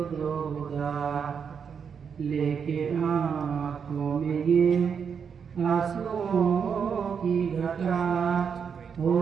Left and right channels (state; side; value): quieter; left; 6.8 dB